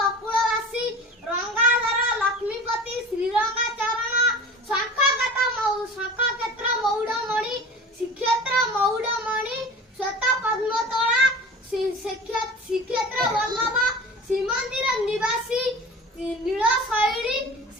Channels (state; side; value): normal; both; correlation 0.38